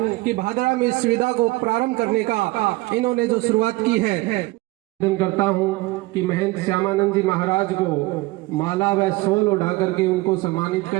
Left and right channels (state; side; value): quieter; left; 21.4 dB